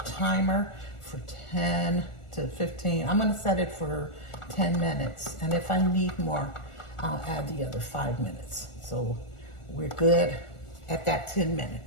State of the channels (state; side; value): late; right; 1.4 ms